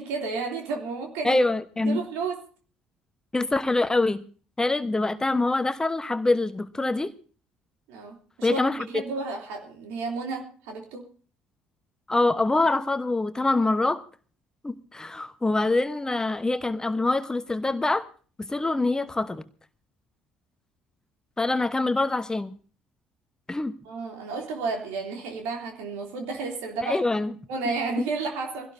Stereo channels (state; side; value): normal; both; correlation 0.87